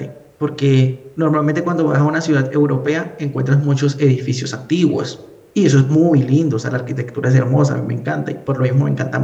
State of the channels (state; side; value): identical; both; correlation 1.00